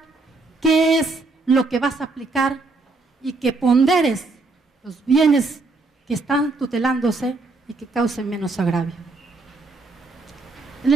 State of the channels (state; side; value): quieter; left; 3.5 dB